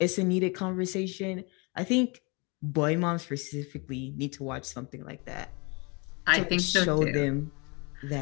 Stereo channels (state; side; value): quieter; right; 30.0 dB